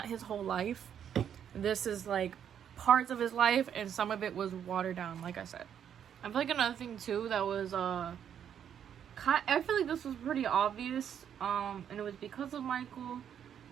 his whole life. This is, like, parts of his life, and some of it was watered down, like I said. I feel like another thing, too, that was, I feel like this was pretty obvious, and it was because of Michael,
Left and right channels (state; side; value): quieter; left; 8.9 dB